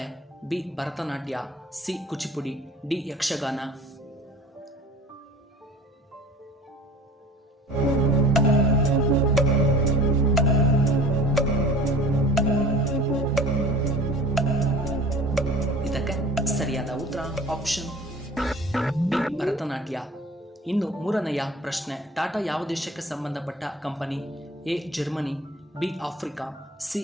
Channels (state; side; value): normal; both; correlation 0.43